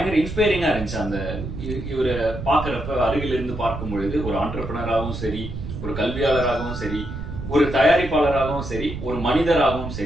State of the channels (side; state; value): right; noise; rumble, 7 dB below the sound